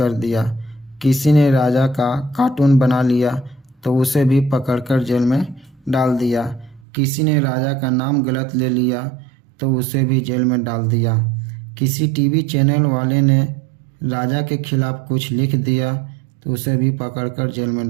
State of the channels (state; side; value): drops out; left; at 6.9 s